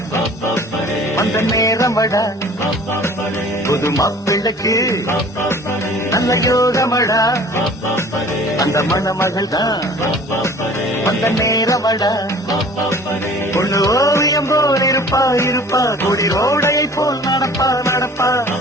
அந்த நேரமடா. புது மாப்பிள்ளைக்கு நல்ல யோகமடா, அந்த மண்ண மகள் தான் அந்த நேரமடா. பொண்ணு ஓவியம் போல் இருப்பா இருப்பா, கொடி ரோடையை போல் நடப்பா நடப்பா,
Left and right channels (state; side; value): normal; both; correlation 0.48